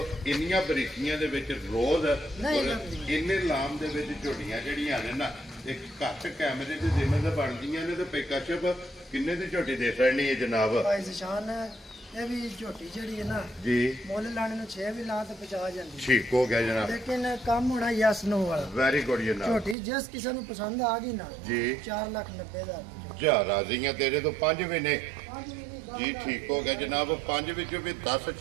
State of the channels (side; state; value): left; drops out; at 19.8 s